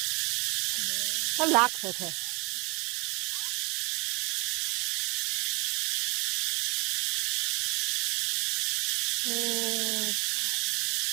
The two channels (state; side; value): quieter; left; 27.7 dB